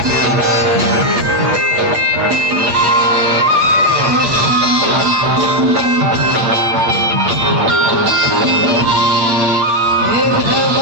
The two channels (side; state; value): left; late; 8.8 ms